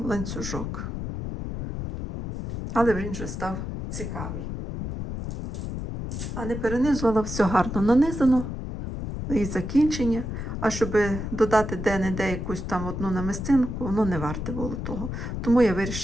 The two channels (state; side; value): noise; left; rumble, 5 dB below the sound